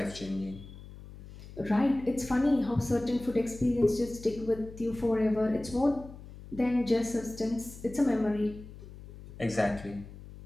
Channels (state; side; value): noise; left; hum, 16 dB below the sound